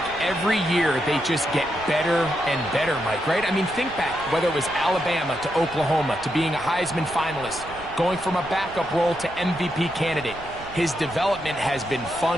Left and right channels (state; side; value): noise; right; rumble, 18 dB below the sound